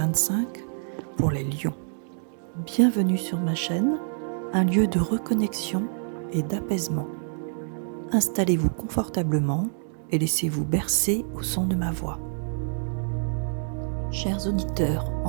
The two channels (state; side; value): silent; left; digital silence